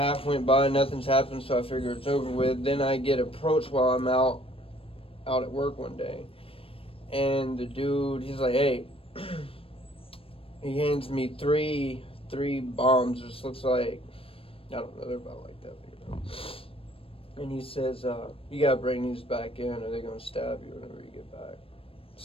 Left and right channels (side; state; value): right; late; 0.27 ms